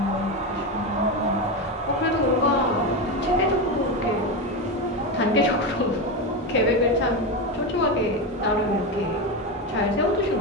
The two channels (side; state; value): both; normal; correlation 0.15